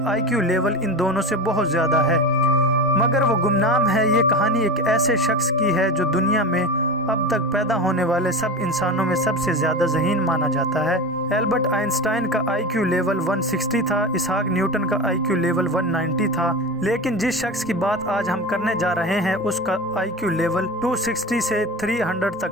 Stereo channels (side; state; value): both; normal; correlation 0.26